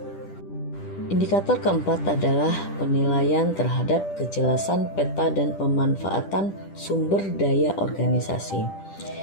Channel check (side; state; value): right; late; 10 ms